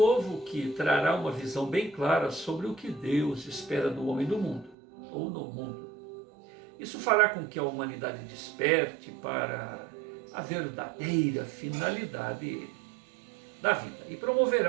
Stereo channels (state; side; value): drops out; left; at 4.8 s